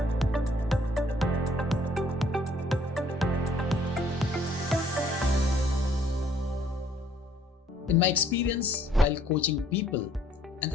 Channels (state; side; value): normal; both; correlation 0.62